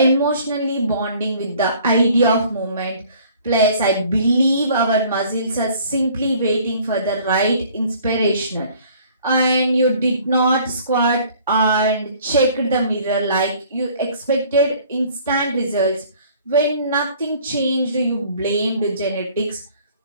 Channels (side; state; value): both; inverted; correlation -0.54